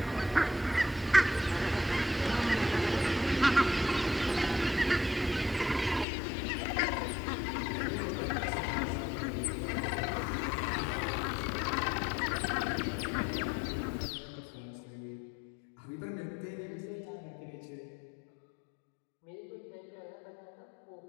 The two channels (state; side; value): drops out; right; at 6.1 s